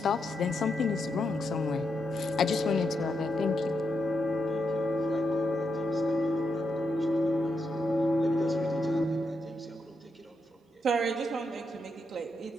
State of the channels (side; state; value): both; normal; correlation 0.82